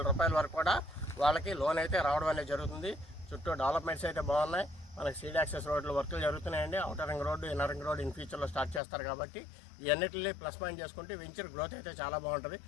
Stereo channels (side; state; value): right; drops out; at 8.8 s